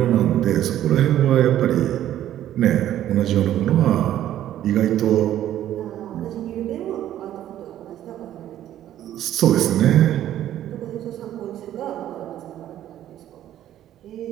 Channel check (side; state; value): left; quieter; 12.1 dB